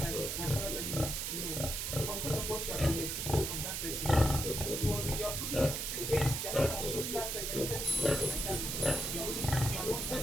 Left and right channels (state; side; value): noise; right; hiss, 2 dB below the sound